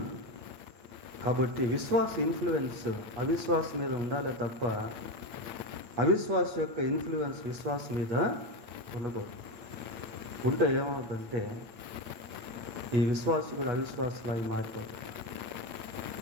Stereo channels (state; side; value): late; left; 8.7 ms